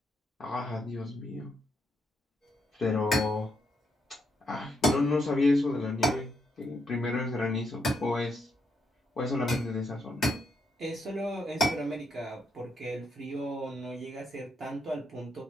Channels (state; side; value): normal; both; correlation 0.78